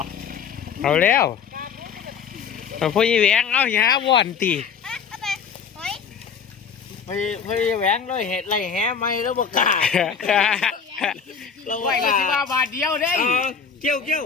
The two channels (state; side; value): quieter; right; 6.5 dB